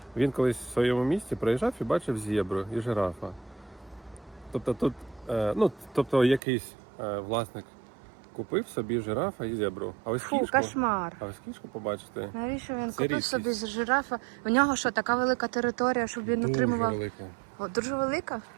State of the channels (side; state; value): left; drops out; at 6.4 s